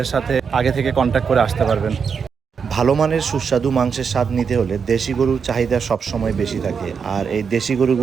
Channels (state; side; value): quieter; left; 6.2 dB